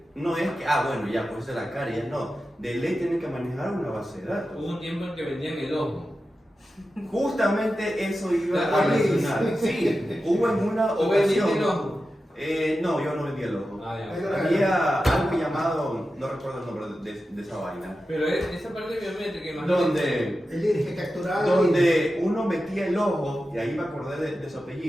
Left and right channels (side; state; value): both; normal; correlation 0.92